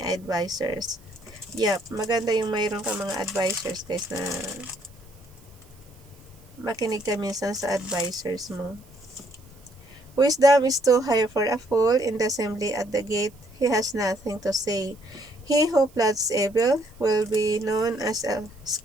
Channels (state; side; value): noise; right; hiss, 29 dB below the sound